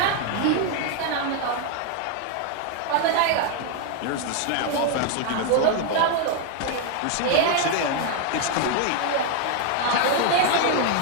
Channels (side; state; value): both; different; correlation 0.01